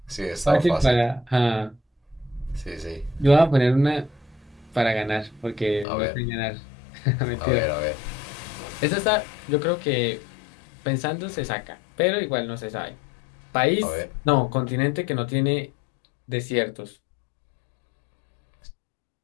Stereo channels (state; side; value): drops out; right; at 5.9 s